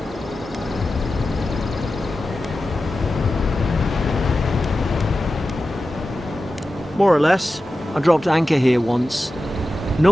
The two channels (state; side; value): normal; both; correlation 0.93